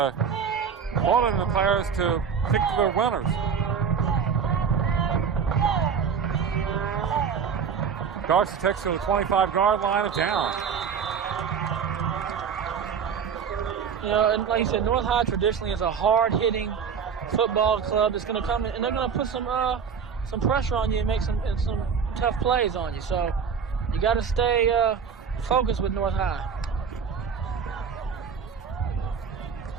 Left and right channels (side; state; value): left; quieter; 6.7 dB